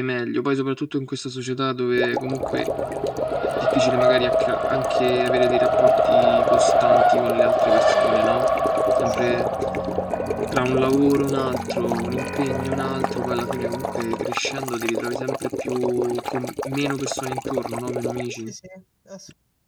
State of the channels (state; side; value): identical; both; correlation 1.00